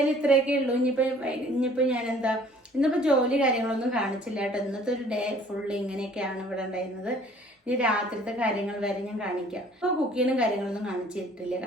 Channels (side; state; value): both; normal; correlation 0.54